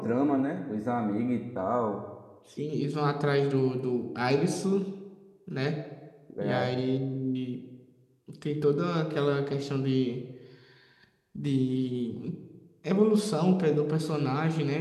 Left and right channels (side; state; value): both; identical; correlation 1.00